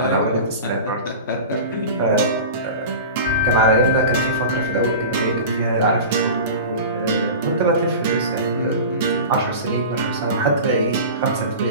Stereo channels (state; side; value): inverted; both; correlation -0.33